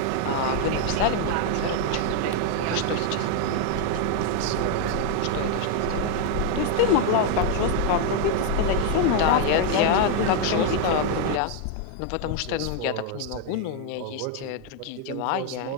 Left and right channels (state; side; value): different; both; correlation 0.01